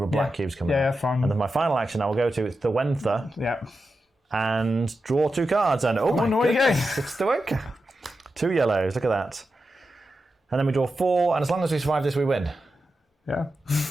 of black cubes coming out. Yeah, fine. And then my final action I will go to Thuenca. Yeah. And draw 2 cards. And oh my goodness, it's Thuenca. 2 yellows, look at that. And then we draw 4, and as long as we survive this, we win. Yeah.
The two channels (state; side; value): normal; both; correlation 0.90